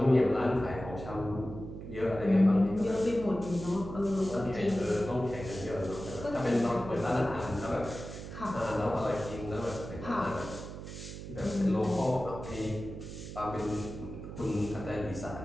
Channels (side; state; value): right; noise; hum, 10 dB below the sound